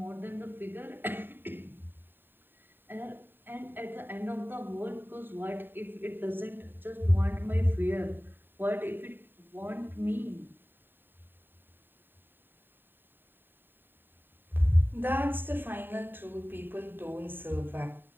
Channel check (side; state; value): left; late; 0.095 ms